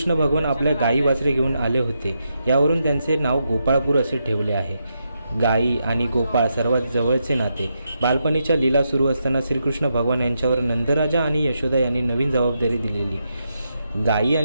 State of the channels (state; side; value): inverted; both; correlation -0.83